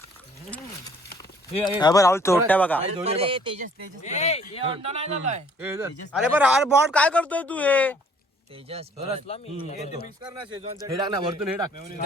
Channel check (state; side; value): normal; both; correlation 0.58